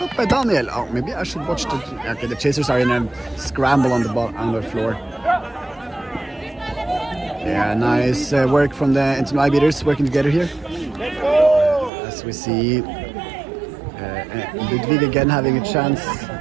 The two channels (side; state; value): left; drops out; at 11.9 s